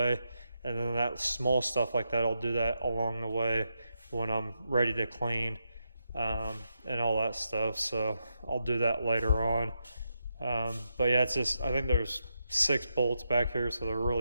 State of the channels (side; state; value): both; inverted; correlation -0.84